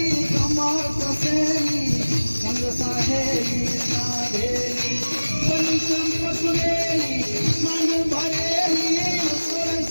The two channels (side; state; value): both; inverted; correlation -1.00